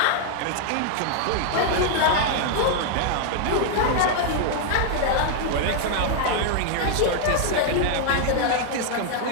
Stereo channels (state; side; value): different; both; correlation 0.00